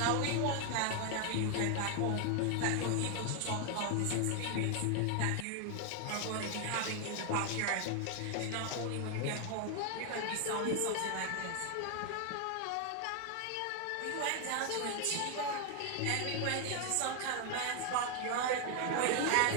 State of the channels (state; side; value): different; both; correlation 0.00